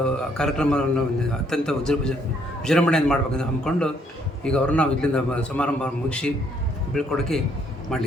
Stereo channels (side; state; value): both; normal; correlation 0.68